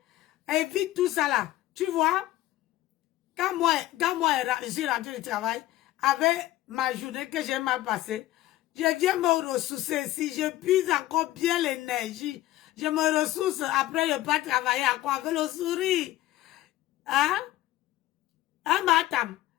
Évite tout ça là. Tu vois, quand moi, j'ai rentré du travail, avec ma journée que j'ai mal passée, je viens me ressourcer. Si je puise encore bien l'énergie, je me ressource. Après, je peux travailler à quoi? Avec le sourire. Hein? Hein, madame?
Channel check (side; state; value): right; quieter; 15.5 dB